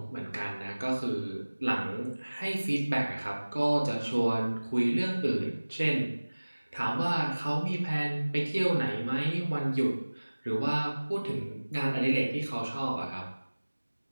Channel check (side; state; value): both; inverted; correlation -1.00